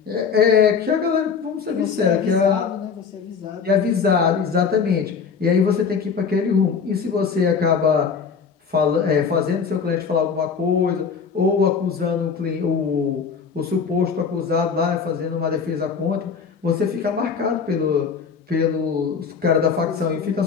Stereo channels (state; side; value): quieter; right; 6.0 dB